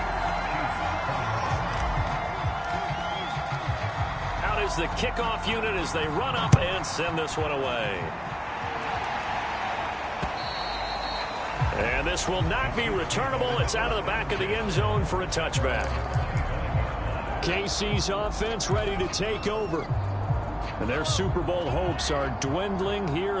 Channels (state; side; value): identical; both; correlation 1.00